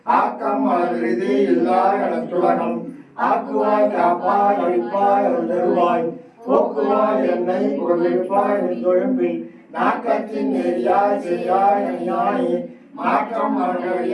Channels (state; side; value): identical; both; correlation 1.00